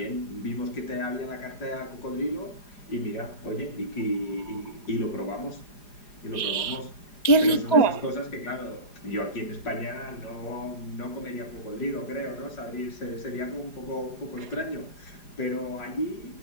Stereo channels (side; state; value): right; late; 4.9 ms